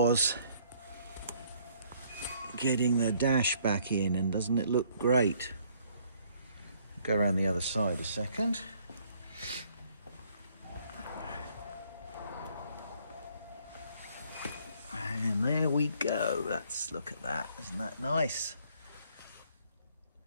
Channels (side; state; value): both; inverted; correlation -0.63